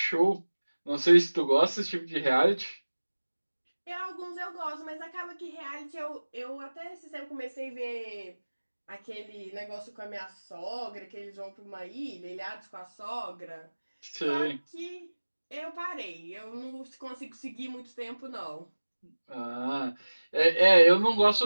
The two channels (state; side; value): inverted; both; correlation -1.00